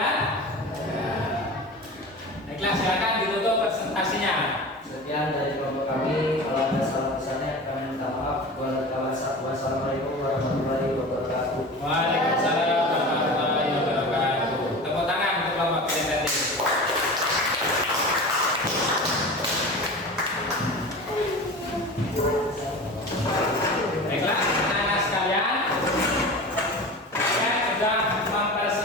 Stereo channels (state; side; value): normal; both; correlation 0.33